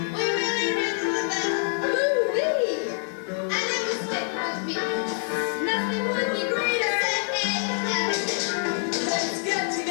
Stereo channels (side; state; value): right; silent; 61 dB below the other